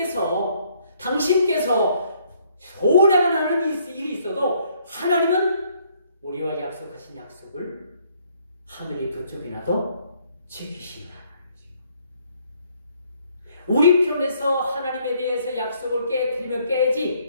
당신께서 소원해만 하는 일이 있어도 하나님은 우리와 약속하신 약속을 하늘이 두 쪽이나도 지키시는 하나님이죠. 우리 편에서 하나님에 대해서 약속을 깨뜨리면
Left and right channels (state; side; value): inverted; both; correlation -0.66